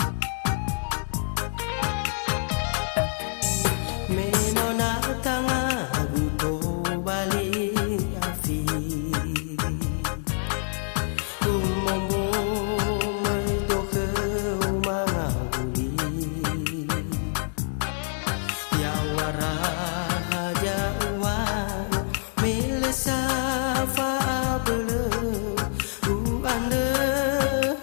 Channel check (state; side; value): silent; right; digital silence